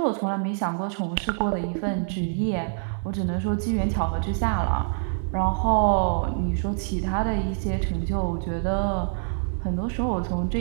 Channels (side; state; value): left; silent; digital silence